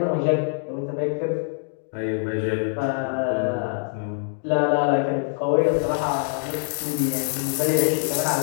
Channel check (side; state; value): right; silent; digital silence